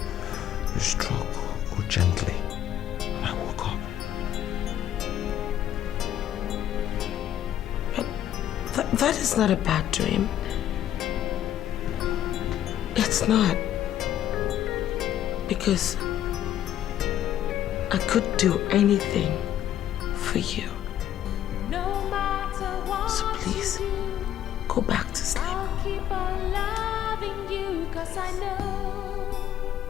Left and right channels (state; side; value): quieter; right; 11.3 dB